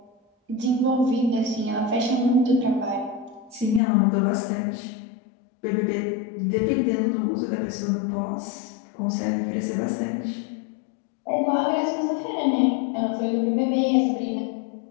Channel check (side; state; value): right; drops out; at 3.8 s